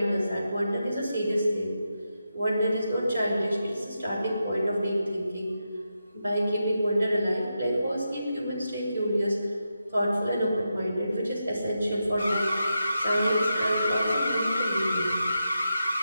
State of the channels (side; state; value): both; inverted; correlation -0.87